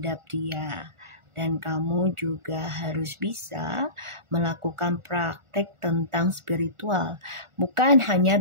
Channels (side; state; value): left; late; 1.4 ms